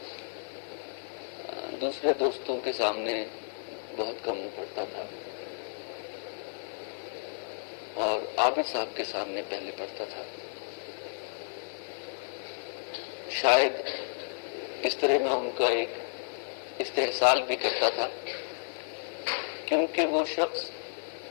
دوسرے دوستوں کے سامنے بہت کم پڑتا تھا، اور عابد صاحب کے سامنے پہلے پڑھتا تھا۔ شاید اس طرح میں ان کا ایک استحصال بھی کرتا تھا، کیونکہ وہ شخص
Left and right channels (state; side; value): silent; right; digital silence